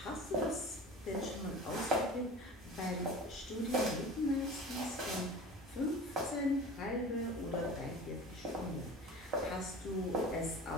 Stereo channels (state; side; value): normal; both; correlation 0.37